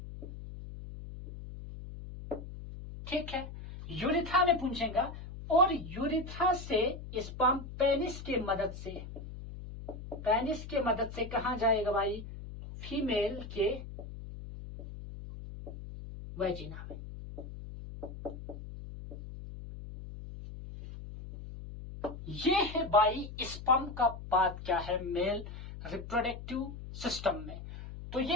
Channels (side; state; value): left; noise; hum, 11 dB below the sound